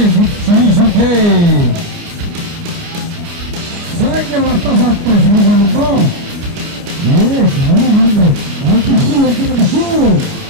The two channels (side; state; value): left; late; 29 ms